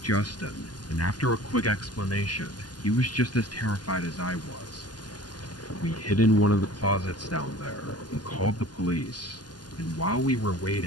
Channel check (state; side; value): late; right; 0.70 ms